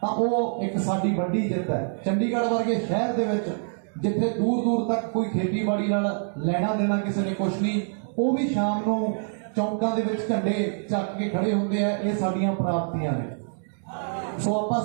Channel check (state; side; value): silent; left; digital silence